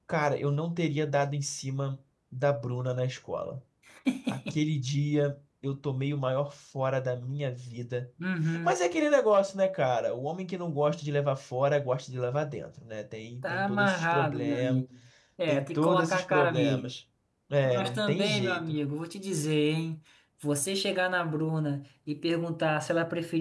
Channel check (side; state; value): both; identical; correlation 1.00